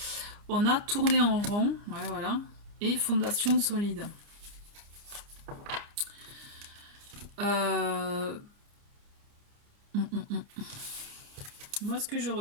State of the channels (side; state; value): left; late; 29 ms